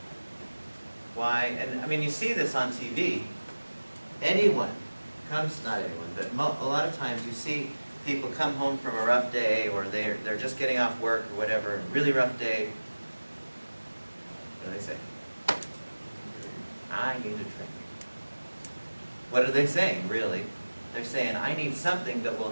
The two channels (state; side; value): inverted; both; correlation -1.00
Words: Why? And I mean, you see this on TV. Anyone comes, not anyone, but a lot of times you see people come home from a rough day, or they're just getting off work or whatever, a really rough day. What do they say? I need a drink. What are they saying, really? They're saying, I need something that will